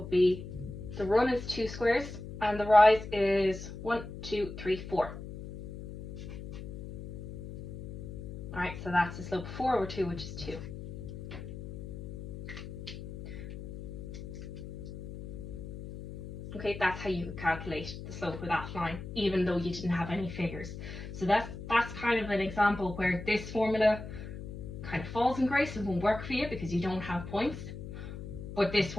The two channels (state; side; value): noise; left; hum, 9 dB below the sound